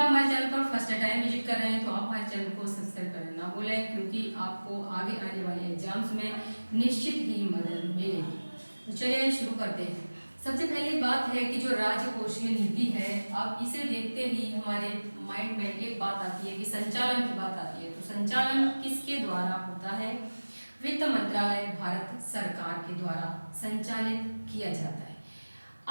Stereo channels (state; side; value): inverted; both; correlation -1.00